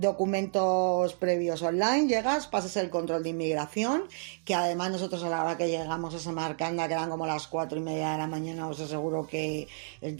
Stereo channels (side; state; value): left; silent; digital silence